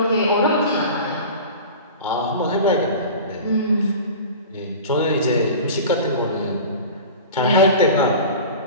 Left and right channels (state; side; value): inverted; both; correlation -0.36